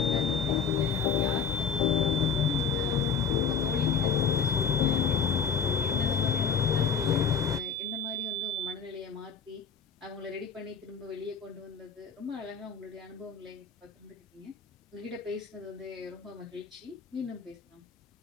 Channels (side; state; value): right; quieter; 6.1 dB